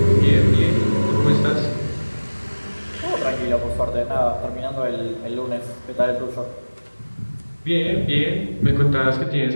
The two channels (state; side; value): inverted; both; correlation -1.00